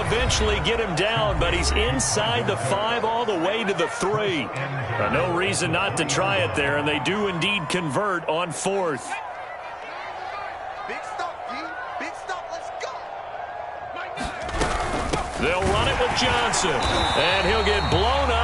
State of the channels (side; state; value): both; identical; correlation 1.00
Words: eventually get him down, but he's inside the 5 all the way to the 3. No reason not to try it there, and they do indeed convert on fourth. Big stop, D. Big stop. Let's go. They'll run it with Johnson, and he'll get blown